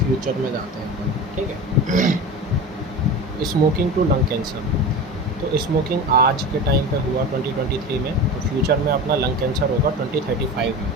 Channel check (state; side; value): normal; both; correlation 0.30